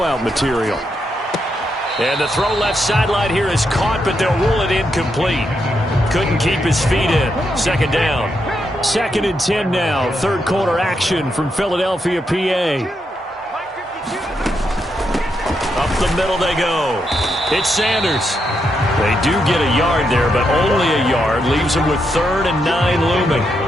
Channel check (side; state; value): both; normal; correlation 0.81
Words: material. And the throw left sideline here is caught, but they'll rule it incomplete. Couldn't keep his feet in. 2nd down. 2nd and 10 now. 3rd quarter action from Philadelphia, PA. Up the middle they go. It's Sanders. They do get a yard there, but only a yard. Leaves them with 3rd and 9 looming.